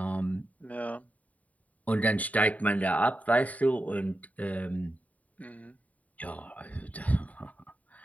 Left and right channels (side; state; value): right; late; 0.071 ms